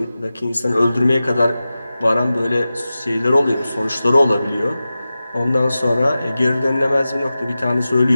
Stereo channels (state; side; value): inverted; both; correlation -0.95